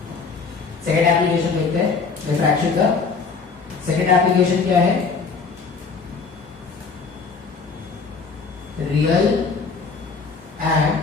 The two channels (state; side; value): quieter; right; 4.9 dB